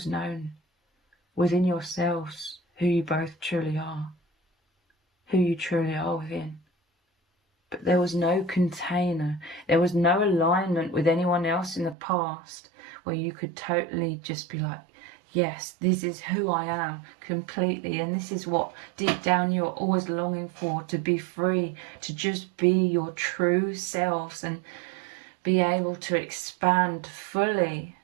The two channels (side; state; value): left; drops out; at 12.0 s